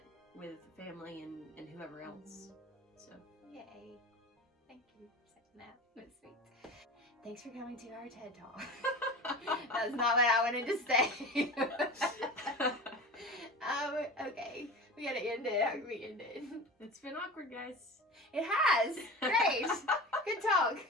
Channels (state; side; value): normal; both; correlation 0.33